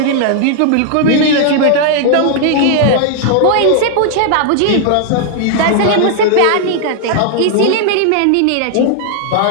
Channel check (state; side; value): different; both; correlation 0.00